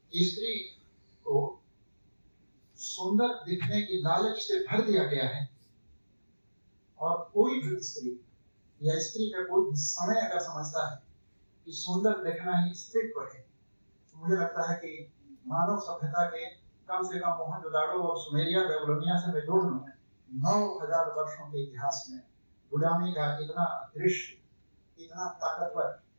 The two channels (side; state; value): both; inverted; correlation -1.00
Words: स्त्री को सुंदर दिखने की लालच से भर दिया गया है, और कोई भी स्त्री या स्त्री का कोई भी समय अगर समझता है कि सुंदर देखना ही स्त्रीत्व है, तो मुझे लगता है कि मानव सभ्यता के कम से कम मोहनजोदाड़ो और सुमेरिया बेबीलोनिया से मैं जोड़ लूं 9000 वर्षों के इतिहास में गुलामी का इतना दृश्य, इतना ताकतवर